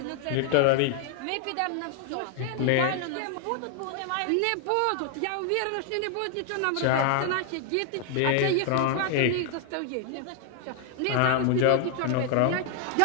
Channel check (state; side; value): different; both; correlation 0.00